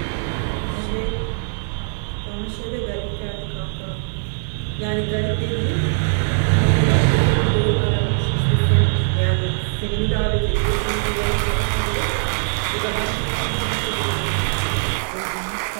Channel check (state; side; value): silent; left; 65 dB below the other